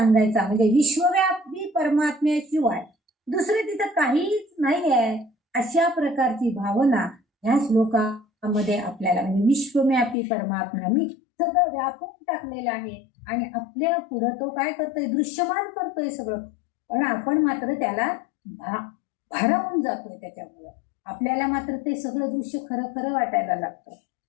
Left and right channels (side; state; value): right; drops out; at 10.2 s